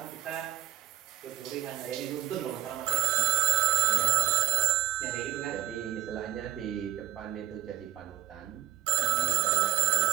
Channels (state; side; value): quieter; left; 14.7 dB